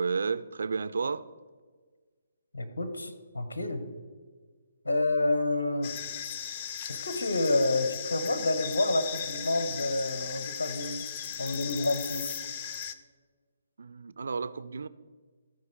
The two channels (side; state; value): both; inverted; correlation -0.84